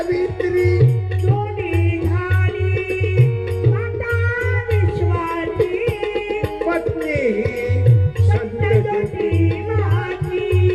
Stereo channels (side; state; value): both; identical; correlation 1.00